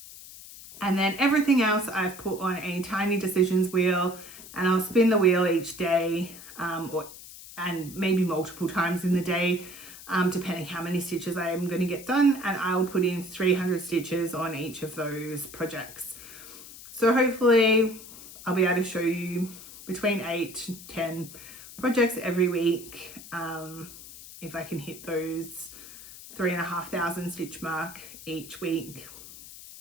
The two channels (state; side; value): noise; left; hiss, 16 dB below the sound